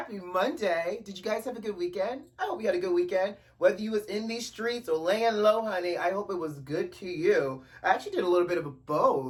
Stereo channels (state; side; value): identical; both; correlation 1.00